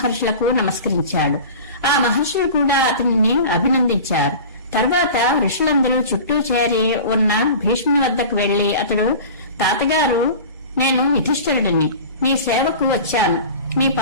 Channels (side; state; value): both; inverted; correlation -0.37